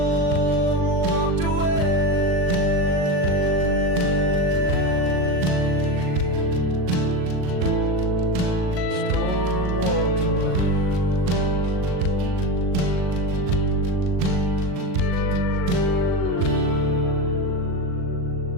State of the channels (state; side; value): late; left; 39 ms